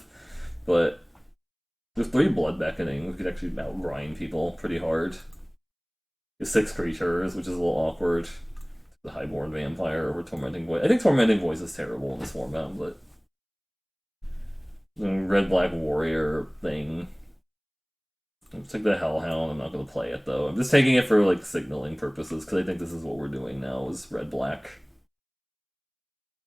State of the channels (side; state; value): both; identical; correlation 1.00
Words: but there's 3 blood beckoning. We could actually out people pretty hard. There's 6 creatures, which is a little awkward. The Highborn Vampire over Tormenting Voice. I think Tormenting Voice is terrible in this format, but the red black warrior thing. Let's take the Hellhound. I'm not going to play it though. I'm just taking it for like signaling purposes because I think this is what we're doing now is red black.